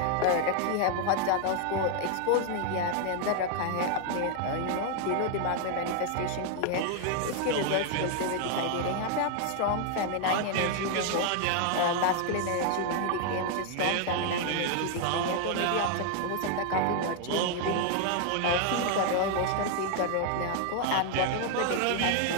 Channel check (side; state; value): both; different; correlation 0.00